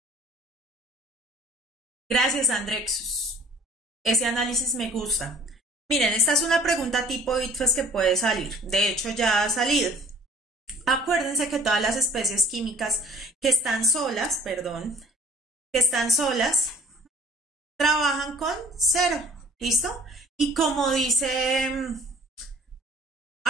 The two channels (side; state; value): both; normal; correlation 0.52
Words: Gracias, Andrexus. Ese análisis me gusta. Miren, esta es una pregunta tipo ITFES que puede salir. De hecho, ya ha salido. Acuérdense que todas las especies químicas que están solas, trabajan con cero. ¿Listo? Y como dice...